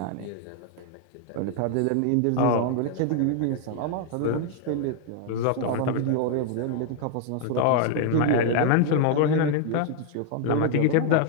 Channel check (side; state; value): both; different; correlation 0.00